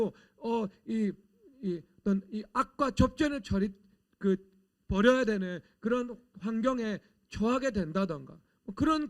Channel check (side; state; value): both; identical; correlation 1.00